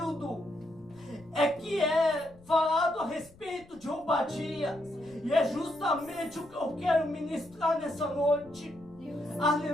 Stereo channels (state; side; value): noise; left; rumble, 25 dB below the sound